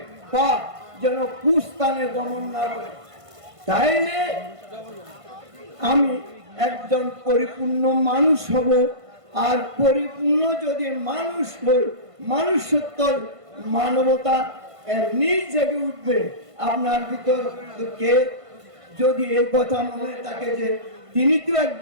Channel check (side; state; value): left; late; 1.5 ms